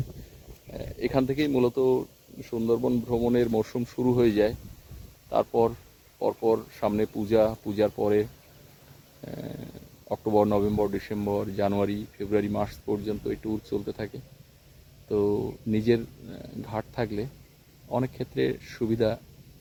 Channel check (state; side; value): identical; both; correlation 1.00